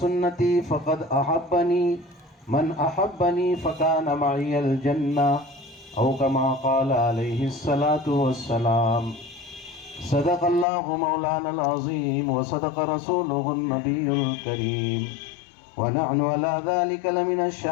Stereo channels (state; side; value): drops out; right; at 10.7 s